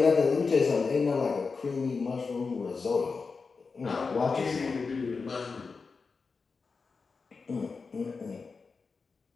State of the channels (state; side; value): quieter; right; 4.7 dB